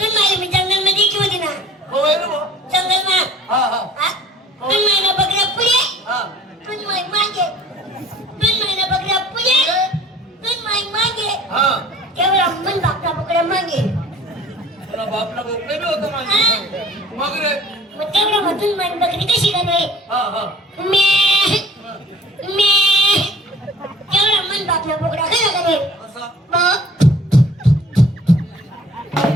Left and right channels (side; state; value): both; normal; correlation 0.50